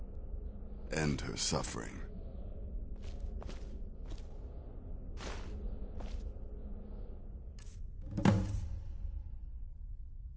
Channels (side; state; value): both; identical; correlation 1.00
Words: End her suffering.